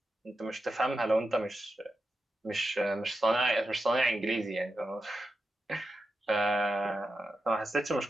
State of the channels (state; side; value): normal; both; correlation 0.89